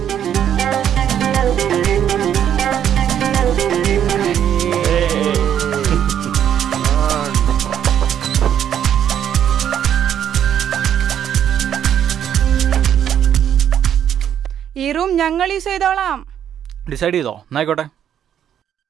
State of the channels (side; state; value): left; quieter; 9.6 dB